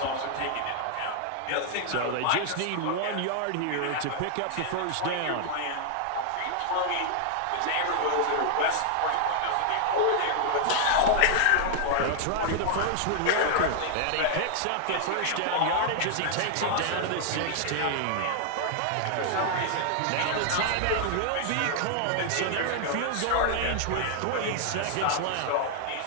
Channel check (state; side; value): different; both; correlation 0.00